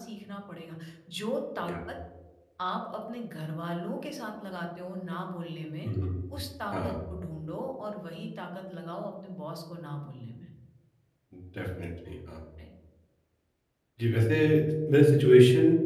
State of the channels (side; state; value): both; identical; correlation 1.00